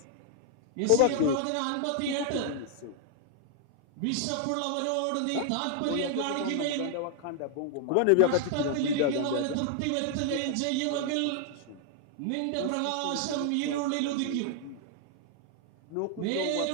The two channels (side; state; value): both; different; correlation 0.00